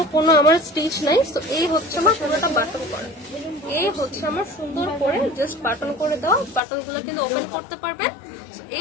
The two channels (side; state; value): right; drops out; at 6.6 s